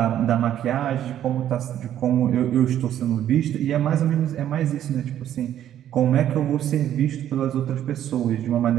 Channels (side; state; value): left; quieter; 11.1 dB